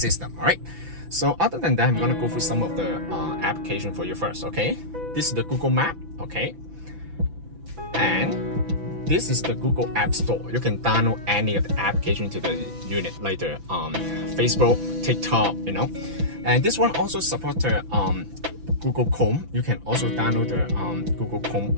All right. So other than that, I'm gonna go through some of the application for you first. Okay, this is the Google Map. Okay. And this is the Google App Store. You can download any of the application to the unit, like the Facebook, TikTok, you know. And this one also supports the Google Chrome. You can also download the Google Chrome,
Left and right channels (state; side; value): late; left; 6.0 ms